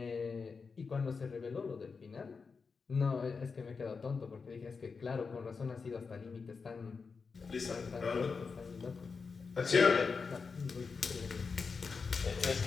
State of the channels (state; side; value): quieter; right; 5.0 dB